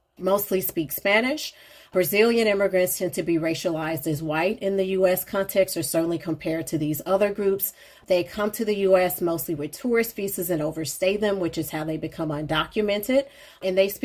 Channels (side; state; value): both; identical; correlation 1.00